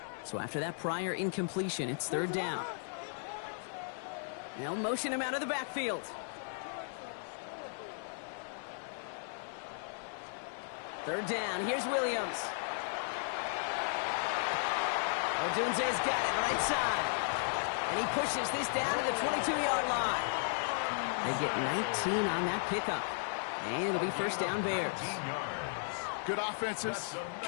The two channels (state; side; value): silent; right; 54 dB below the other